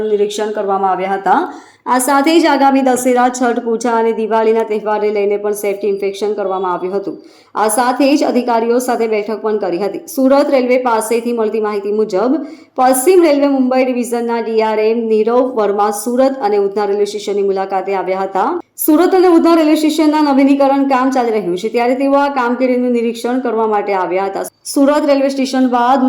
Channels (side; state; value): both; identical; correlation 1.00